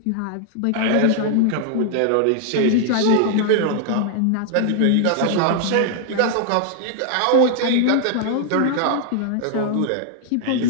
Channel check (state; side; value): different; both; correlation 0.00